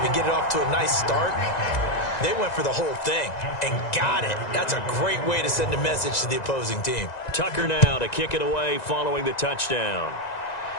and get it off to a nice start. They went for the whole thing and got it. That's a great way to send a message to the opposing team. Tucker now to kick it away following the touchdown.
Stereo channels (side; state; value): right; late; 1.9 ms